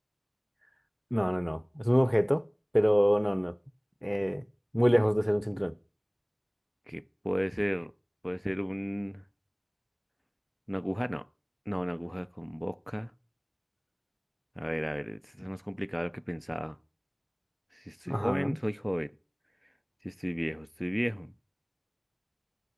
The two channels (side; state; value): both; identical; correlation 1.00